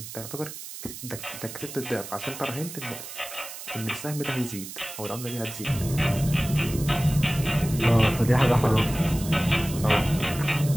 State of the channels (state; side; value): noise; right; hiss, 11 dB below the sound